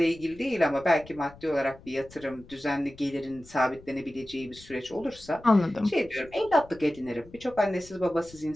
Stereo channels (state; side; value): noise; left; rumble, 21 dB below the sound